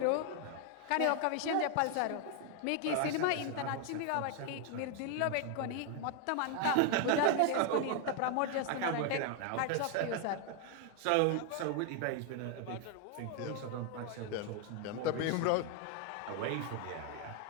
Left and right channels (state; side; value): different; both; correlation 0.01